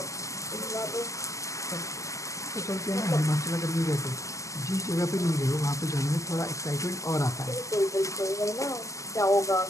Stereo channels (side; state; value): right; late; 0.16 ms